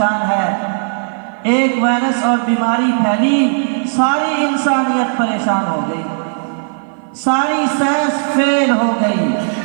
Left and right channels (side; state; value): left; silent; 55 dB below the other